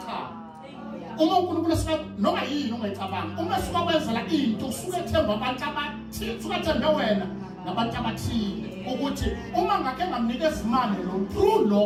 Cha. Uma uNkulunkulu asika noma yini ongayicabanga uma suka kwenzela into usuke ethemba abantu abathile usuke ethembe wena nabantu abathile ukuthi uma ngake ngamnikeza imali lo true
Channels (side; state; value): both; identical; correlation 1.00